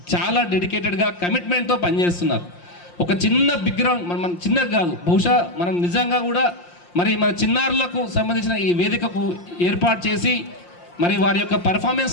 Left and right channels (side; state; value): right; late; 5.7 ms